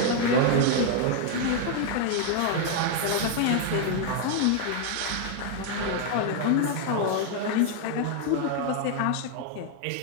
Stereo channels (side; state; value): both; different; correlation 0.00